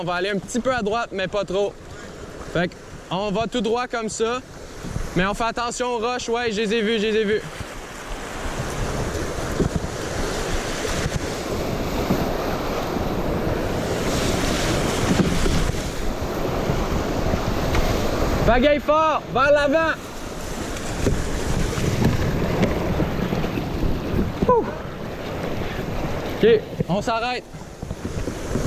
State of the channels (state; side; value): identical; both; correlation 1.00